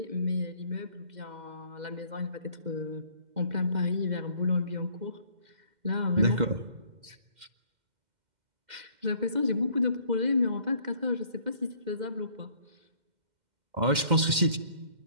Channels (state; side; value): late; left; 2.1 ms